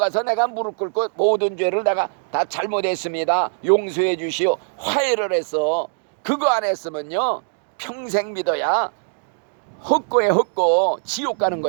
내가 무릎 꿇고 모든 죄를 내가 다 잘못했습니다, 용서해 주시오, 화해를 했어. 그거 안 했으면요, 평생 믿어야 헛고에 헛고 지옥 가는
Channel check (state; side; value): silent; left; digital silence